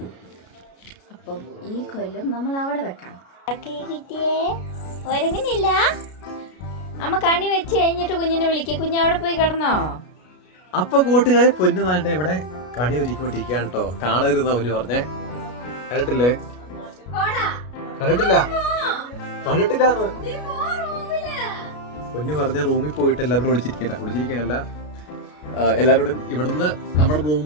അപ്പം ഈ കൊല്ലം നമ്മൾ അവിടെ വെക്കാം. കിട്ടിയേ ഒരുങ്ങുന്നില്ല. അമ്മ കണി വെച്ച് കഴിഞ്ഞിട്ട് കുഞ്ഞിനെ വിളിക്കുക. കുഞ്ഞ് അവിടെ പോയി കിടന്നോ? അപ്പൊ കൂട്ടുകാരെ പൊന്നു താണ്ട ഇവിടെ കണി ഒരുക്കിക്കൊണ്ടിരിക്കുകയാണ് കേട്ടോ. കാണരുതെന്നാ പൊന്നു പറഞ്ഞേ. കണ്ടിട്ടില്ലേ? കണ്ടിട്ടില്ല കണ്ടിട്ടില്ല പൊന്നു പറഞ്ഞ റൂമിൽ പോയിട്ട് എല്ലാവരോടും ഒളിച്ചിരിക്കാനല്ല, എല്ലാവരോടും ഇവിടുന്ന് നമ്മുടെ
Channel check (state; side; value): late; right; 33 ms